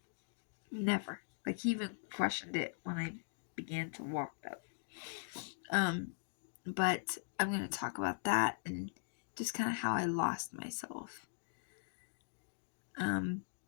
Never. Like, he even questioned it when I began to walk that. But I'm gonna talk about that and just kind of how I lost myself.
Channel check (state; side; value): silent; right; digital silence